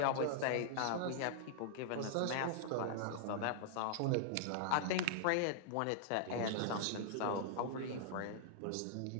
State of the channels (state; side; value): different; both; correlation -0.01